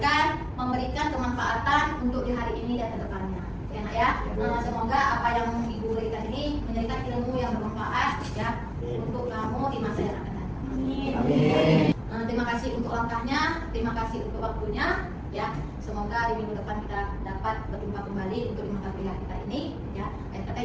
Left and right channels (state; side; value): identical; both; correlation 1.00